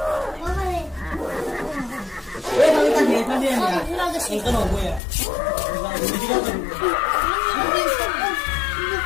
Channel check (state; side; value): drops out; right; at 5.0 s